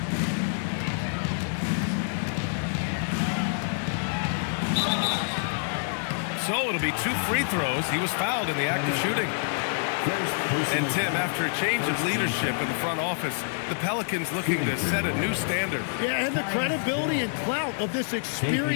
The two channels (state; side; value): silent; right; digital silence